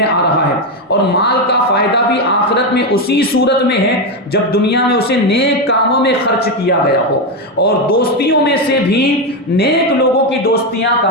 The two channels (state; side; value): normal; both; correlation 0.09